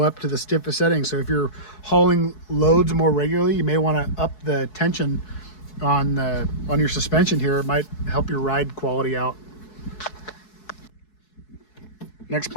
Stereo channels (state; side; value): late; right; 4.7 ms